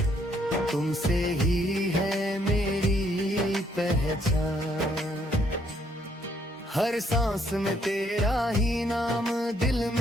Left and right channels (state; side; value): normal; both; correlation 0.69